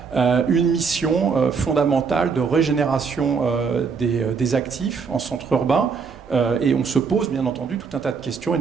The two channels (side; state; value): left; quieter; 5.5 dB